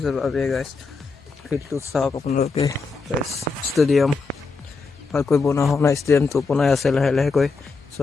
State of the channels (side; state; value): right; quieter; 4.4 dB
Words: abe guys. ফিল্ডটো চাওক আপোনালোকে guys. Stadium ভালকৈ বনোৱা হোৱা নাই, ষ্টেডিয়ামটো বনাই আছে লাহে লাহেকৈ. So